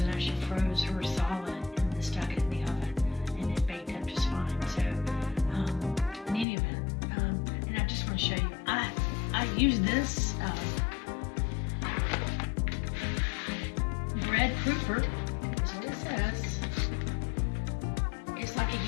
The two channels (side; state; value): right; drops out; at 6.5 s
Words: actually froze her solid and then stuck it in the oven, and it baked up just fine. So in any event, and I just want to show you, I use this bread proofer, is what it says. It's like a